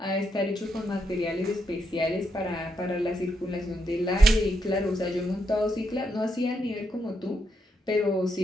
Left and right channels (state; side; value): normal; both; correlation 0.80